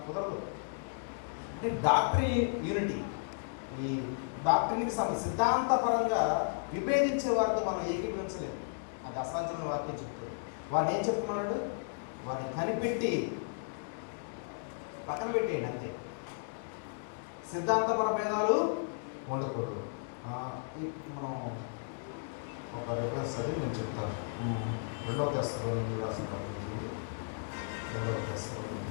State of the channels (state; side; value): silent; right; digital silence